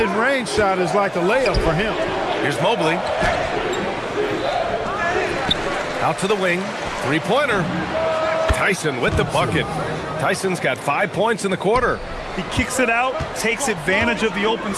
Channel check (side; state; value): both; identical; correlation 1.00